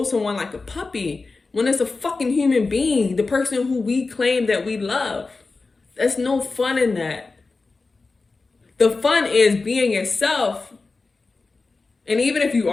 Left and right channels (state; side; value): quieter; right; 3.9 dB